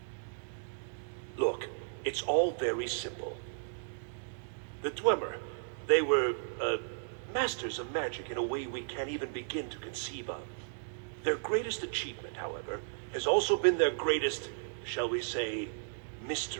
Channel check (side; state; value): left; silent; digital silence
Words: Look, it's all very simple. The Dwemer, they were, masters of magic in a way we can't even begin to conceive of. Their greatest achievement, however, has also been their greatest, shall we say,